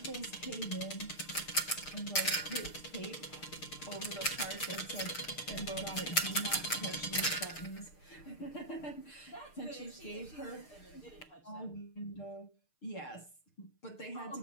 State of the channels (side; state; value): right; late; 6.6 ms